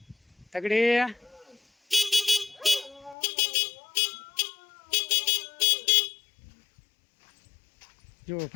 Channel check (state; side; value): drops out; right; at 3.2 s